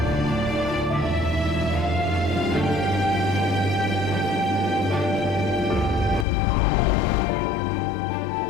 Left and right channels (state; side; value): drops out; right; at 6.2 s